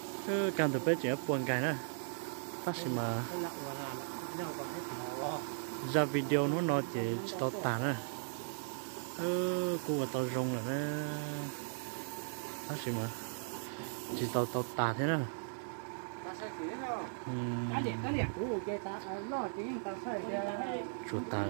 cứ càng tụi bây giờ buồn cái nữa phát sinh mà ra video nó chỉ tao tàn á cô và tao rong là nó phát sinh mà chỉ tao tàn thế nào chuột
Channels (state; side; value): silent; left; 53 dB below the other